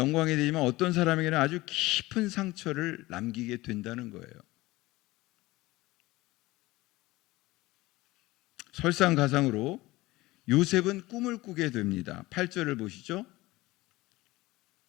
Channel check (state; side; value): quieter; right; 19.5 dB